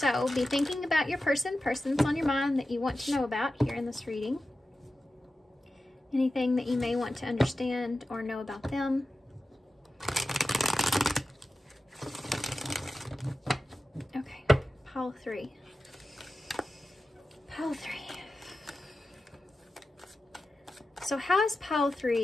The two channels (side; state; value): both; normal; correlation 0.93